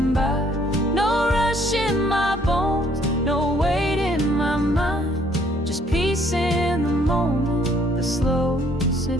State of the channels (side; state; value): both; normal; correlation 0.63